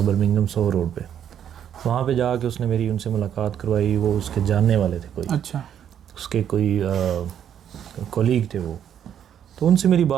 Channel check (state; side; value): quieter; left; 9.4 dB